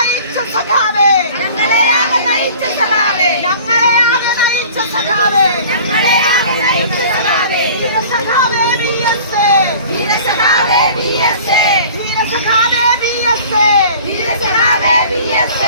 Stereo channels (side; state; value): both; inverted; correlation -0.45